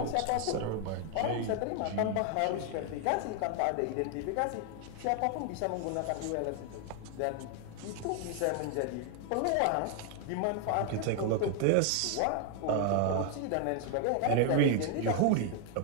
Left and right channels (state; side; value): different; both; correlation 0.00